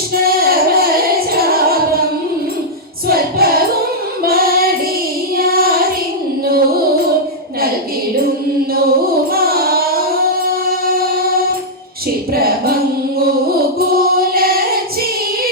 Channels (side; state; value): both; normal; correlation -0.07